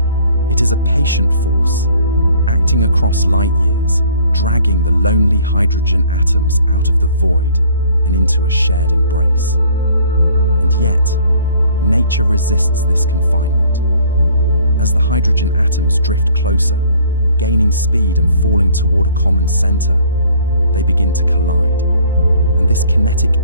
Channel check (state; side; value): inverted; both; correlation -0.57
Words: It is a patient force, acting across light years, dragging the lonely hydrogen atoms out of the void and into a shared embrace. And yet, nature resists this confinement. As the hydrogen atoms drift closer, gaining speed and falling toward a common center, they begin to collide, and this kinetic